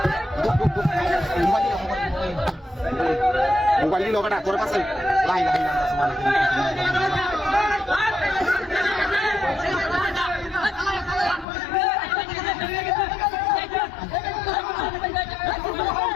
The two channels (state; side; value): drops out; right; at 11.5 s